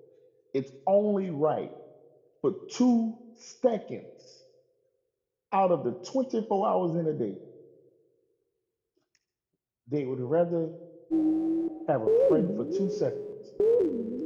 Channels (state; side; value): identical; both; correlation 1.00